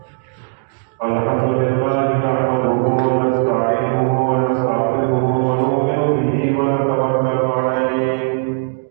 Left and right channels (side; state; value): left; silent; digital silence